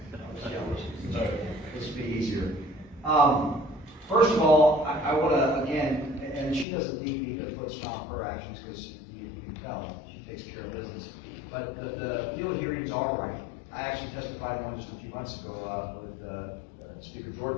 This will be easier. First of all, I want to, again, and she doesn't need me to put stop her actions because you can tell she takes care of business. But the field hearings are right. I actually testified one just a few months ago with Speaker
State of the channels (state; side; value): drops out; right; at 6.7 s